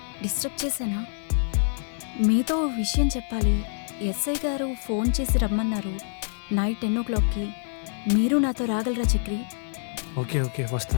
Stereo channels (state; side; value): silent; right; digital silence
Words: డిస్టర్బ్ చేశానా? మీతో ఓ విషయం చెప్పాలి. ఎస్ఐ గారు ఫోన్ చేసి రమ్మన్నారు నైట్ 10 o'clockకి. మీరు నాతో రాగలరా చక్రి? ఓకే ఓకే